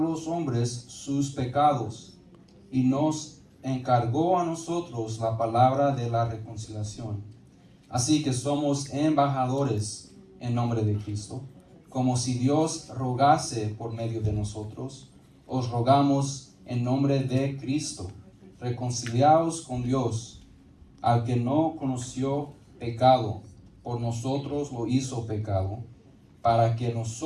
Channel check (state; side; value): identical; both; correlation 1.00